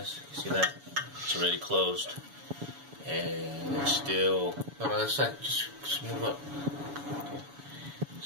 You see that? It's already closed, and it's still. No, that's not. Just move up. Okay.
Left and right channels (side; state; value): left; late; 7.1 ms